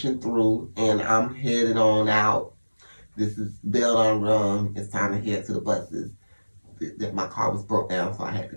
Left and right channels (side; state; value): both; inverted; correlation -1.00